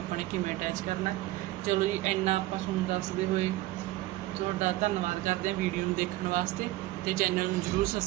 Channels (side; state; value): left; quieter; 17.3 dB